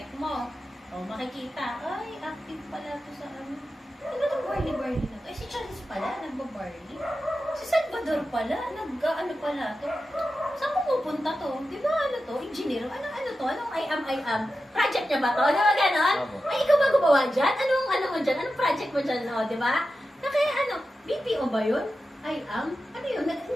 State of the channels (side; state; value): both; normal; correlation 0.92